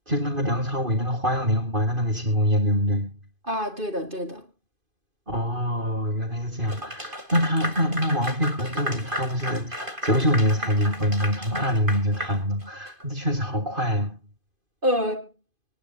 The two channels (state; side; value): late; left; 2.5 ms